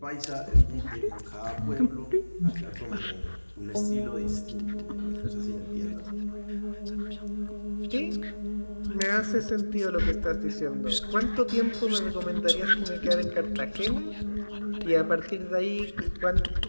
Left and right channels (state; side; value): inverted; both; correlation -1.00